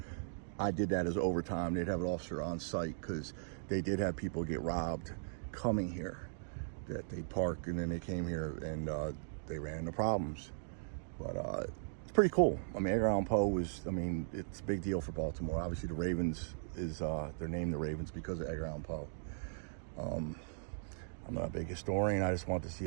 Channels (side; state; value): left; silent; digital silence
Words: I did that as overtime. They'd have an officer on site because they did have people get robbed coming here, that they park and then they came here and they ran into problems. But it's pretty cool. I mean, Edgar Allen Poe was, I mean, it's a big deal for Baltimore. Obviously the Ravens is, they're named the Ravens because of Edgar Allen Poe. I'm not a big historian. I just wanted to see